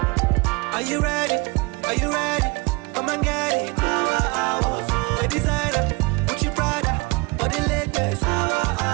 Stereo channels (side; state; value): left; quieter; 27.2 dB